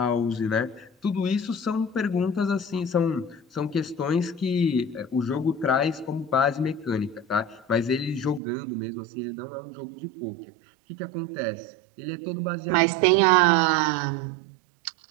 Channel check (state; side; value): drops out; left; at 8.4 s